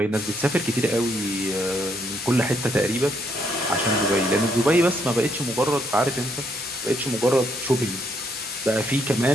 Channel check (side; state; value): both; normal; correlation 0.73